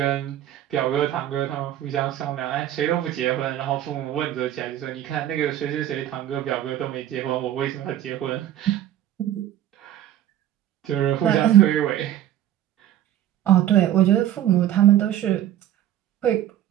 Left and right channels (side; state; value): left; quieter; 12.0 dB